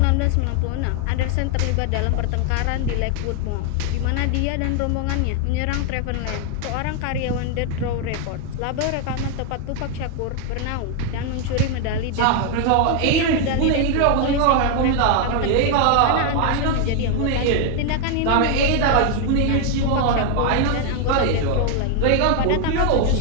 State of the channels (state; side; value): different; both; correlation 0.00